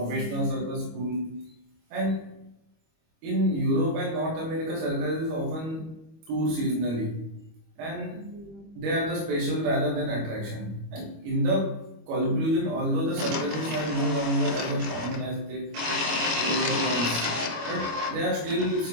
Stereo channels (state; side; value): late; left; 25 ms